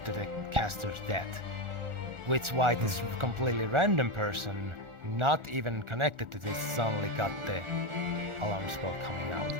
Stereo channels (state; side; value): late; left; 1.4 ms